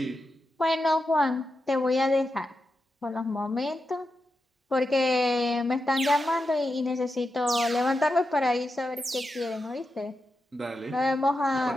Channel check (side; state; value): both; normal; correlation 0.89